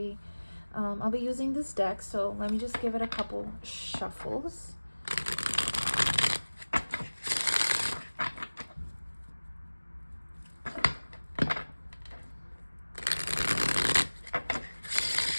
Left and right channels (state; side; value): inverted; both; correlation -1.00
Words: I'll be using this deck, so let me just give it a couple shuffles.